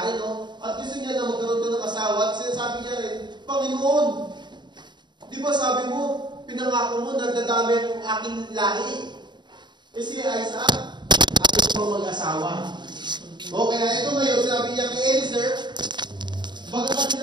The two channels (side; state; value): left; late; 0.22 ms